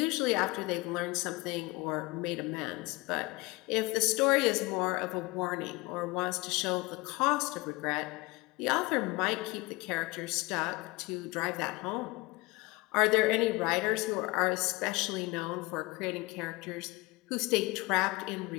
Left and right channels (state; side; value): quieter; right; 23.0 dB